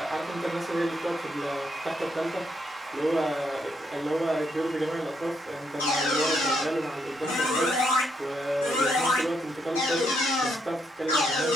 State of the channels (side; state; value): both; normal; correlation 0.76